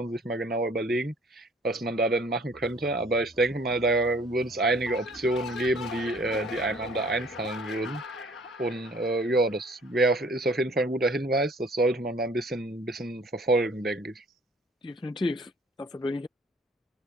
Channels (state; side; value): normal; both; correlation 0.55